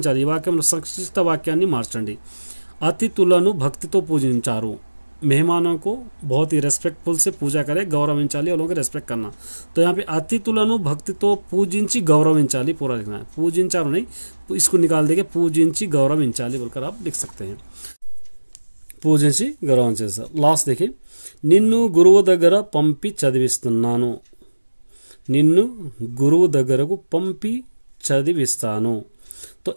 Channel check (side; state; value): both; inverted; correlation -1.00